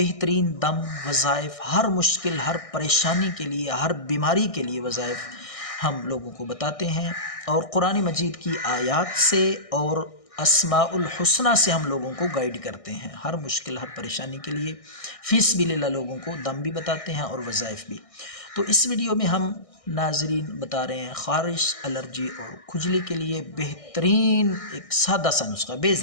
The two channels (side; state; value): right; late; 1.6 ms